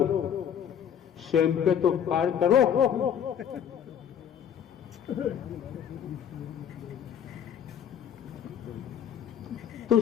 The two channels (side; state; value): right; quieter; 8.8 dB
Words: स्वयं पे तो उपकार करो। तो